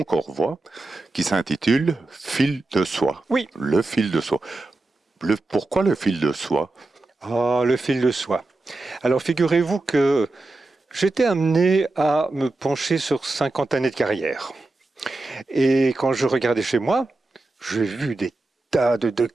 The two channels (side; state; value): left; quieter; 3.0 dB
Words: Corps Voix qui s'intitule Fil de soie. Oui. Le fil de soie. Pourquoi le fil de soie? Ah, le fil de soie. Alors figurez-vous que j'étais amené à me pencher sur 50 années de carrière. Et quand je regardais chez moi, j'ai vu des tas de